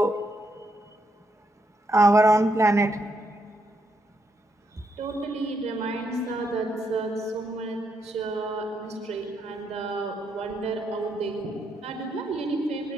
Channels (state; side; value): normal; both; correlation 0.78